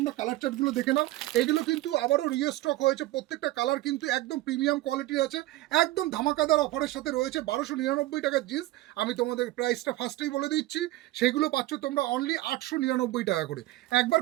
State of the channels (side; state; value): left; quieter; 17.1 dB